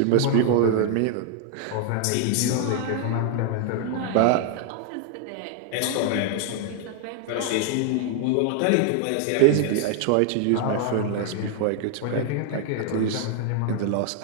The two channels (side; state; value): both; different; correlation 0.00